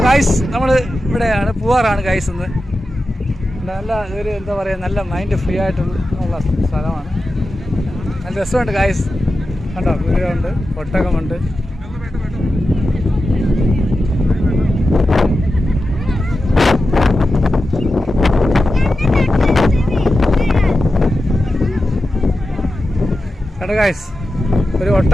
ഗായ്സ് നമ്മൾ ഇവിടെയാണ് പൂവാറാണ് ഗായ്സ്. ഇന്ന് നല്ല ഒരു എന്താ പറയുക, നല്ല മൈൻഡ് ഫ്രീ ആയിട്ടുള്ള സ്ഥലമാണ്. നല്ല രസമുണ്ട് ഗായ്സ്. കണ്ടോ, കുതിരയുണ്ട്, ഒട്ടകമുണ്ട്. കണ്ടോ ഗായ്സ്, ഒരു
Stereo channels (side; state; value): both; normal; correlation 0.92